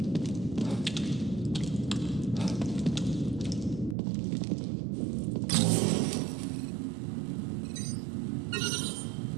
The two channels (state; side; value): drops out; left; at 4.0 s